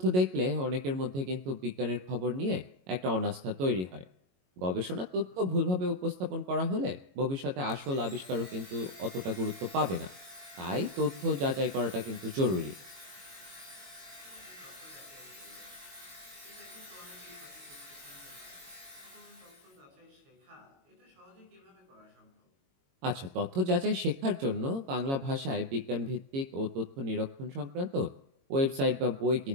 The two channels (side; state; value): left; late; 22 ms